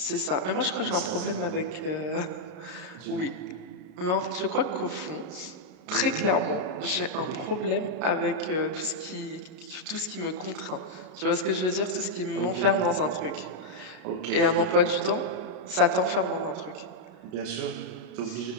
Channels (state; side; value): late; left; 33 ms